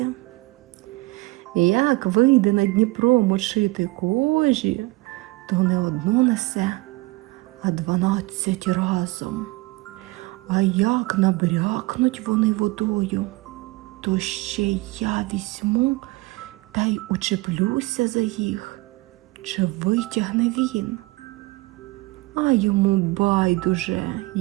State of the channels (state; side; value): quieter; left; 22.2 dB